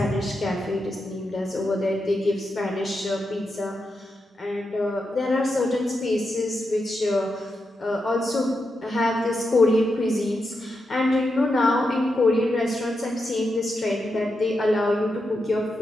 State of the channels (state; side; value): normal; both; correlation 0.86